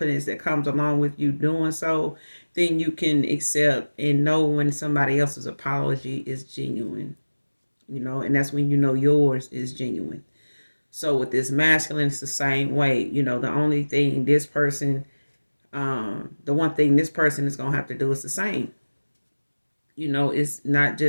that comes along with you doing so, then you can accept and know when somebody else's apology is genuine, and that's when yours is genuine. So with this masculine, it's the same way. The only thing this person, the one thing this person is gonna have to do is the same. It's not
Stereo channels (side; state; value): both; inverted; correlation -1.00